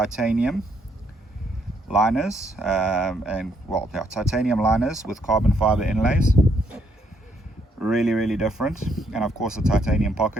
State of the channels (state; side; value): normal; both; correlation 0.72